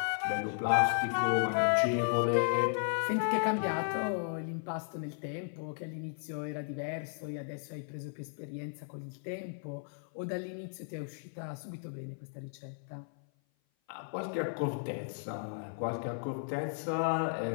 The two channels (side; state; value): right; silent; 55 dB below the other